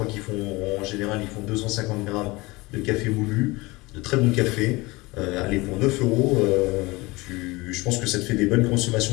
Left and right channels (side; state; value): right; quieter; 22.8 dB